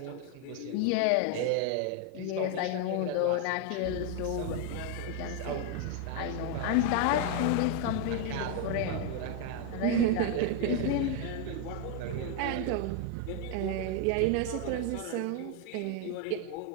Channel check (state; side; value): different; both; correlation 0.01